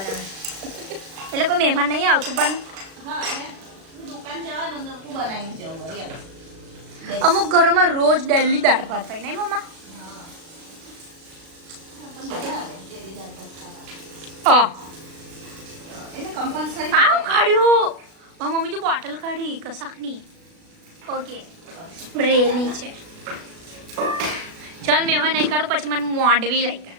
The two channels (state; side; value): late; left; 36 ms